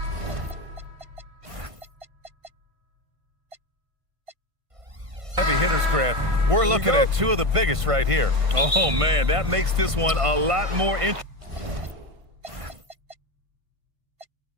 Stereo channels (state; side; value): late; left; 1.5 ms